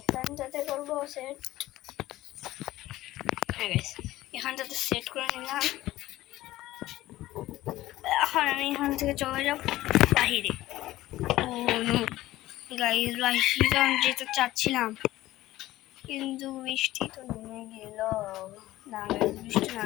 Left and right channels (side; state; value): right; quieter; 16.1 dB